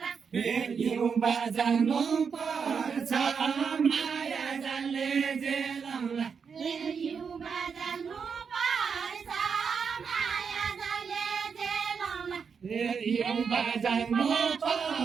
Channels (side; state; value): left; quieter; 6.1 dB